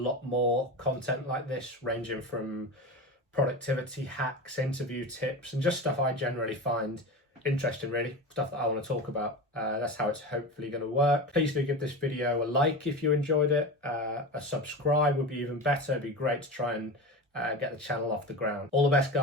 more content like this, ranging from productivity hacks, interview tips, and just stuff I generally find interesting, really. Stuff that I want to talk about. That's how it's hopefully going to work. Please do give this video a like if you enjoyed it. A subscribe would be even better. It'd be great to try and get the channel off the ground. All the best,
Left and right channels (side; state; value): both; normal; correlation 0.26